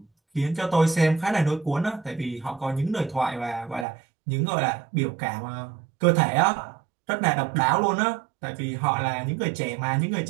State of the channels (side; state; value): left; drops out; at 3.9 s